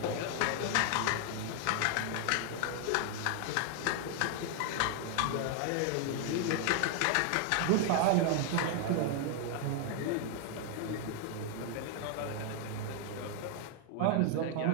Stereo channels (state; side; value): different; both; correlation 0.00